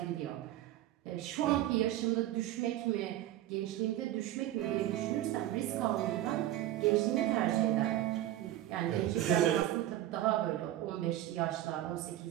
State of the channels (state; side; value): quieter; left; 13.5 dB